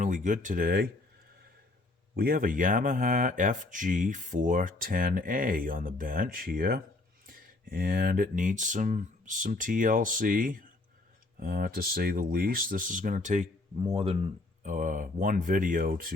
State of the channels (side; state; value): right; quieter; 3.0 dB